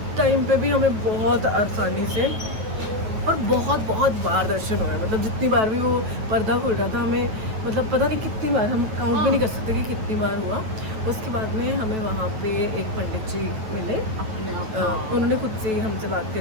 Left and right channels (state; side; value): late; left; 9.2 ms